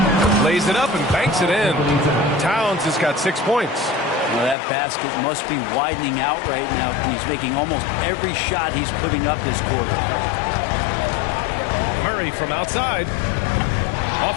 Lays it up and banks it in. Towns has got 6 points. Well, that basket must be widening out right now. He's making almost every shot he's putting up this quarter. Murray from outside.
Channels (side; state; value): right; drops out; at 4.5 s